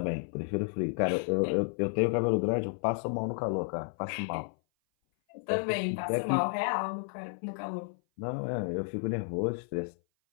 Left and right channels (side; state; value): right; silent; 56 dB below the other